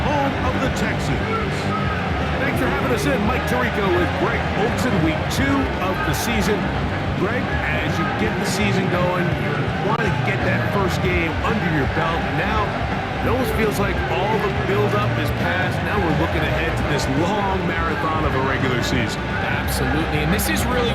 home of the Texans. Thanks for having us in. Mike Tirico with Greg Olson, week 2 of the season. Greg, as you get the season going, you want to get that first game under your belt. Now, it almost feels like all the build-up is past. Now we're looking ahead to this long marathon of a regular season. Absolutely, and this is really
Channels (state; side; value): identical; both; correlation 1.00